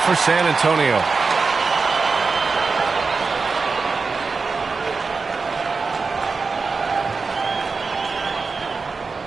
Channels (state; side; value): quieter; left; 4.5 dB